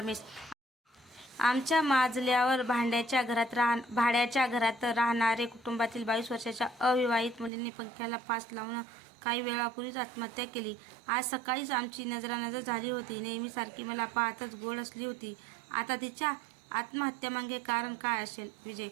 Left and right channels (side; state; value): left; drops out; at 7.5 s